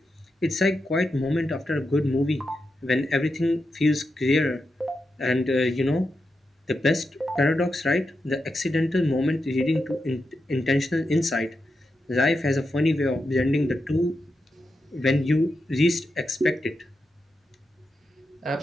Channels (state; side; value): normal; both; correlation 0.87